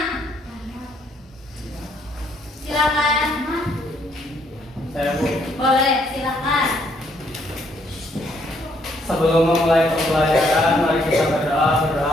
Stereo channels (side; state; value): both; normal; correlation 0.69